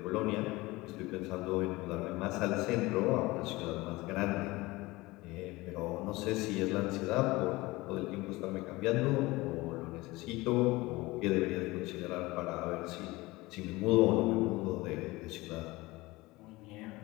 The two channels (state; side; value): quieter; right; 21.1 dB